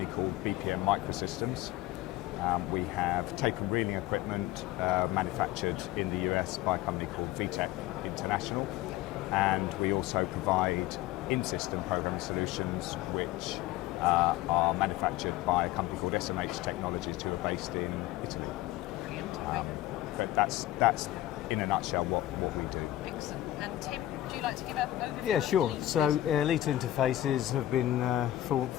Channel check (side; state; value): right; quieter; 14.9 dB